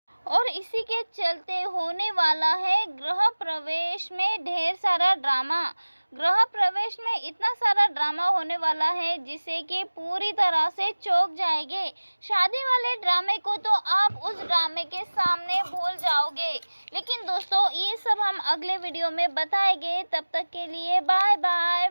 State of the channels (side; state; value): both; inverted; correlation -1.00